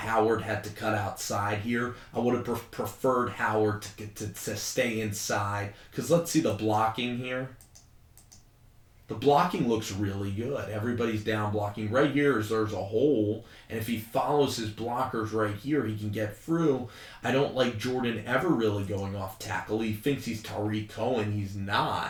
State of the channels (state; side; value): identical; both; correlation 1.00